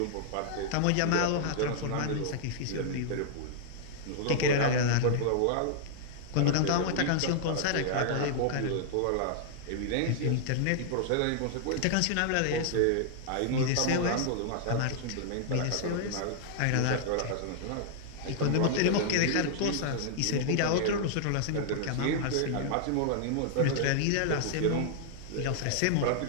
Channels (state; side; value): different; both; correlation -0.01